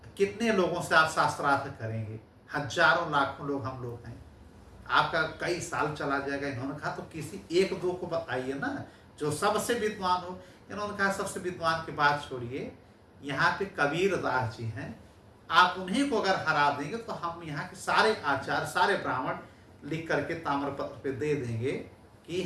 कितने लोगों से आप शास्त्रार्थ करेंगे, हजारों लाखों लोग हम लोग हैं, आपका कई साल चला जाएगा। इन्होंने कहा तो किसी एक दो को बताइए ना जो सबसे विद्वान हो। इन्होंने कहा सबसे विद्वान की बात छोड़िए, यहाँ पे कबीर दास जी हैं, आप उन्हीं को अगर हरा देंगे तो हम यहाँ के सारे आचार्य सारे ब्राह्मण लिख करके ताम्रपत्र पे दे देंगे कि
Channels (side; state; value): both; identical; correlation 1.00